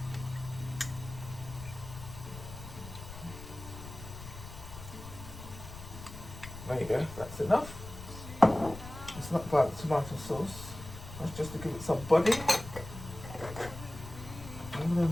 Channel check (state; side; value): noise; left; rumble, 13 dB below the sound